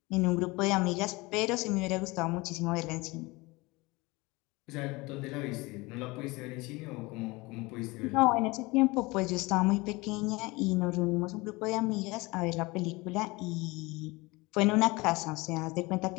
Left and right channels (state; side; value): quieter; right; 23.5 dB